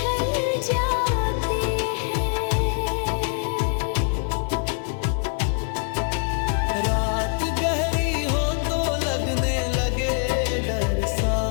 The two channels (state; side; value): quieter; right; 39.6 dB